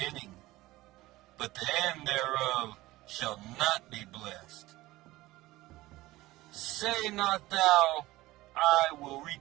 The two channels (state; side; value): quieter; left; 18.2 dB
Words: but the end thereof shall not be blessed. Say not thou, I will